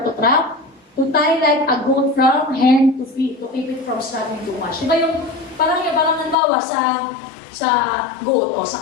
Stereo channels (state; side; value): drops out; right; at 6.4 s